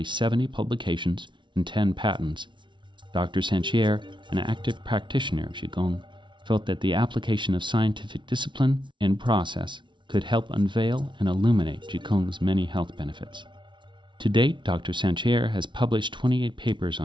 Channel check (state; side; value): late; left; 0.24 ms